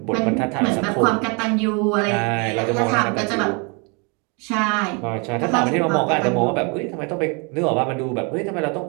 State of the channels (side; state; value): left; quieter; 32.7 dB